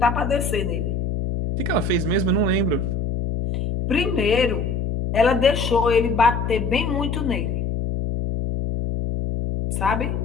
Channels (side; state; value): left; noise; hum, 2 dB below the sound